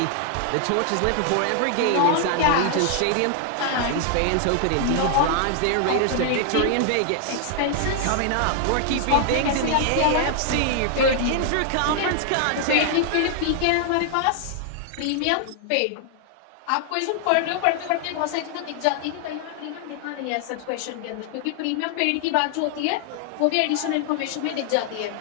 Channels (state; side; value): different; both; correlation 0.00